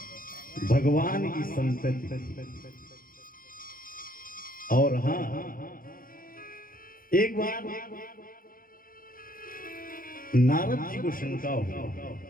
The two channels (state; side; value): late; right; 0.41 ms